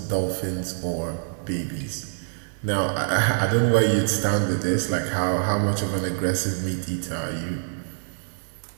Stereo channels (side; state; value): left; silent; digital silence